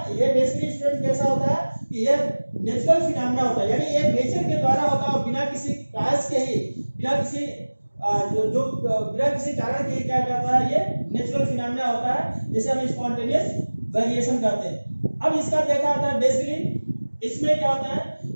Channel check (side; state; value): both; inverted; correlation -1.00